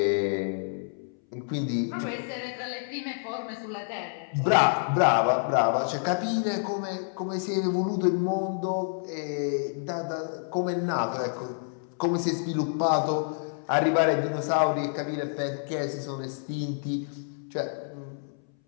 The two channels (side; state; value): right; silent; 59 dB below the other